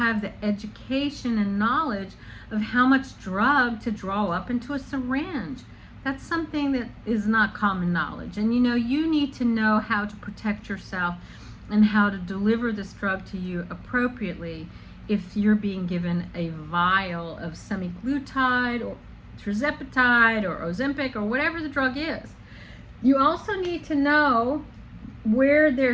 the education and knowledge of how much drug to draw up into a syringe. That's something that is not common knowledge. And you need to know how to protect yourself and how to deliver this drug to you appropriately if you're being given a vial of semaglutide or tirzepatide or Ozempic or whatever the drug is. You also need to know where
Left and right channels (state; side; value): identical; both; correlation 1.00